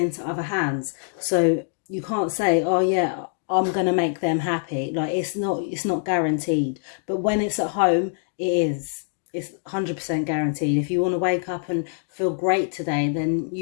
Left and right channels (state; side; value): silent; right; digital silence